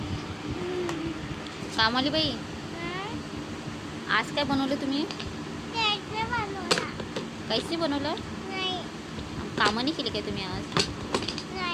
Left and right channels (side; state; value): both; identical; correlation 1.00